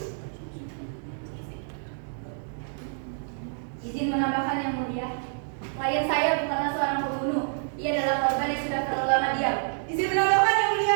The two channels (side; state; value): left; silent; digital silence